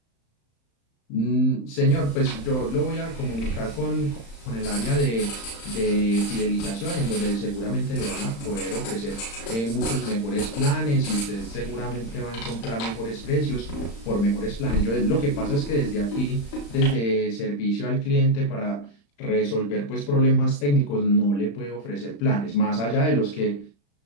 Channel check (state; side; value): late; right; 35 ms